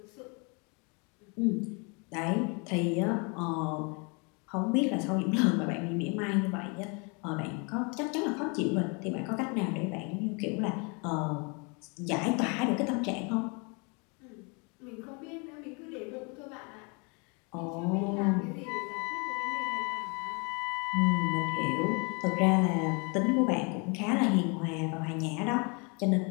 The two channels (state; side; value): quieter; right; 32.7 dB